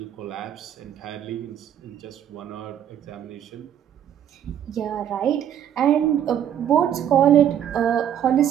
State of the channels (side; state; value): left; quieter; 9.9 dB